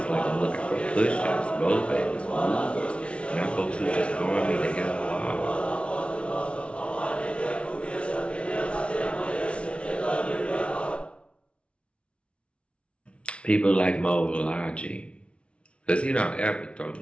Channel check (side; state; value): right; late; 0.060 ms